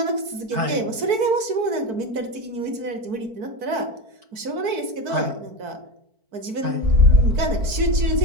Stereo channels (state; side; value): late; left; 4.5 ms